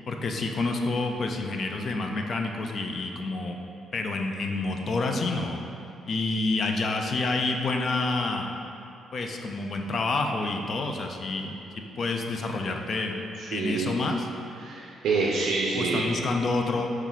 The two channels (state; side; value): normal; both; correlation 0.76